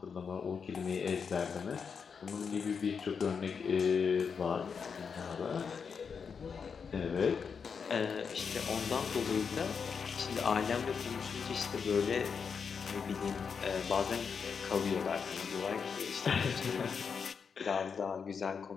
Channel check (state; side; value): quieter; right; 6.1 dB